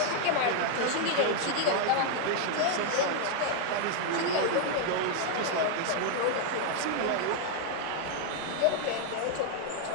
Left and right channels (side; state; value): both; different; correlation 0.00